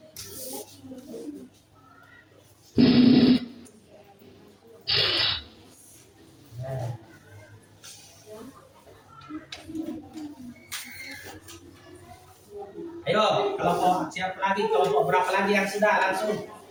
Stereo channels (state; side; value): identical; both; correlation 1.00